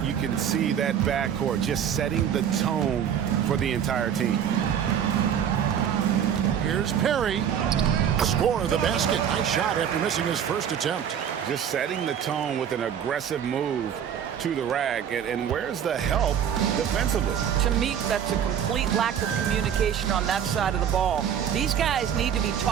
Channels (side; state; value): left; quieter; 8.8 dB